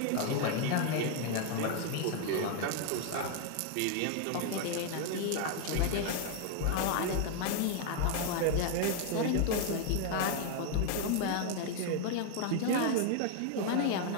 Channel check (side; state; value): both; different; correlation 0.00